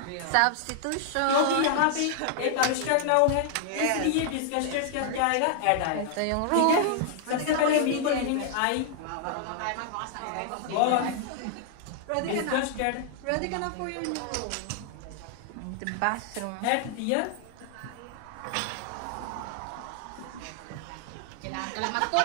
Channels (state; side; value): different; both; correlation 0.00